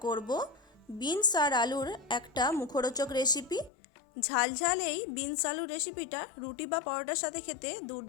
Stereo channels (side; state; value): right; drops out; at 3.7 s